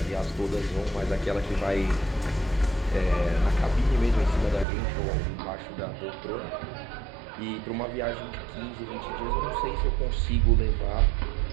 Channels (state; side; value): drops out; left; at 4.7 s